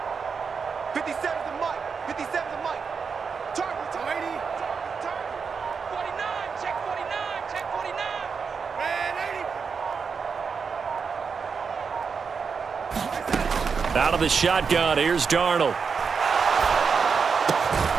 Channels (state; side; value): quieter; left; 5.7 dB